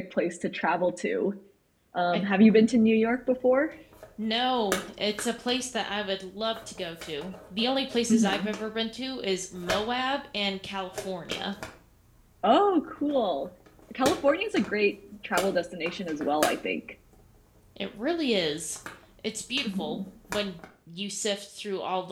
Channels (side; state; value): both; identical; correlation 1.00